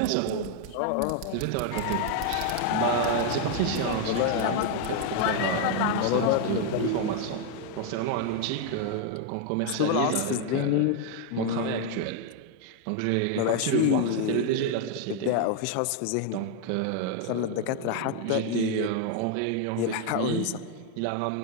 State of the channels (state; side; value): different; both; correlation 0.01